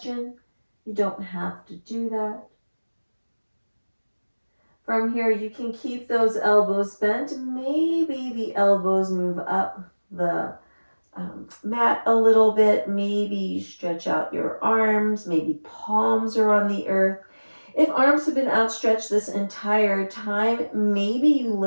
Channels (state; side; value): inverted; both; correlation -1.00